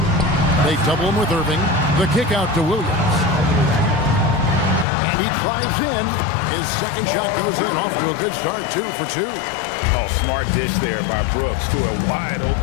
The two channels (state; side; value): drops out; right; at 4.9 s